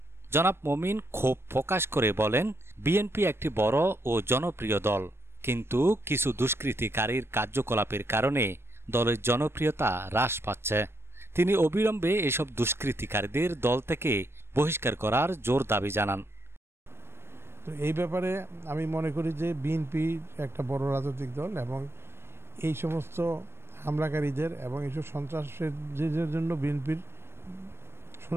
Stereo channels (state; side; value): late; left; 0.12 ms